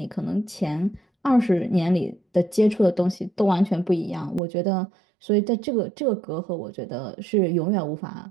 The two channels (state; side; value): drops out; left; at 4.4 s